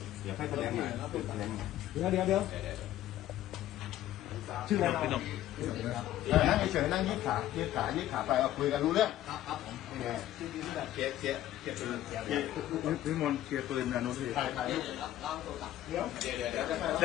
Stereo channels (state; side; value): quieter; right; 13.4 dB